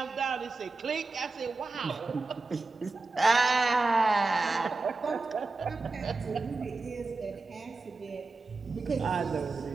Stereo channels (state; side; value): quieter; left; 3.6 dB